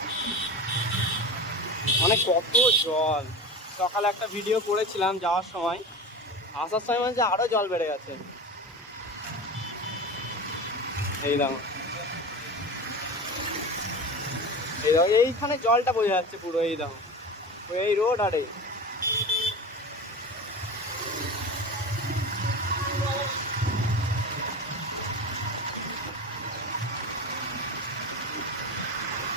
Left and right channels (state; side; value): normal; both; correlation 0.29